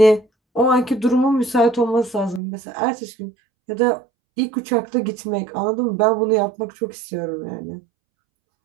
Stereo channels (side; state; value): left; drops out; at 2.4 s